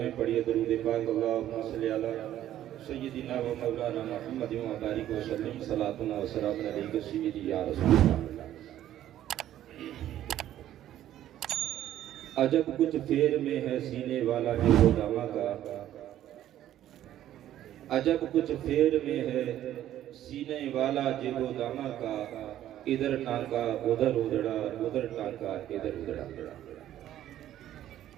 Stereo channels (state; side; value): quieter; left; 12.3 dB